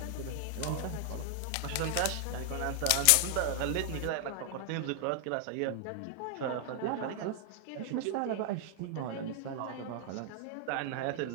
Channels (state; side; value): different; both; correlation 0.00